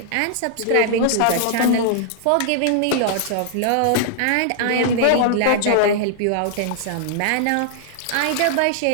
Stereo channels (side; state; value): both; different; correlation -0.01